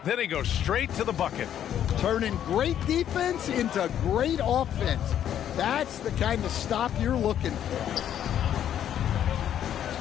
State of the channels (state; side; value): quieter; right; 10.2 dB